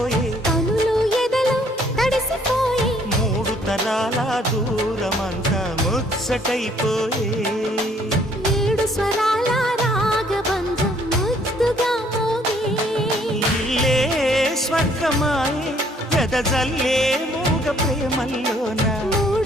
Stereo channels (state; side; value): normal; both; correlation 0.63